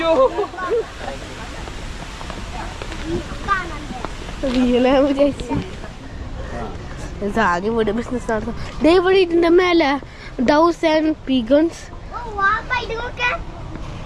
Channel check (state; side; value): identical; both; correlation 1.00